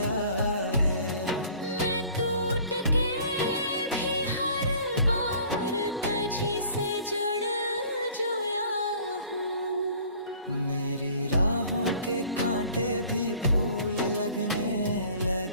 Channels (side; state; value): both; inverted; correlation -0.51